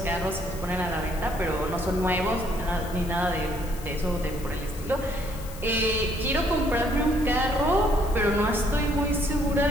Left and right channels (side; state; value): left; noise; hiss, 17 dB below the sound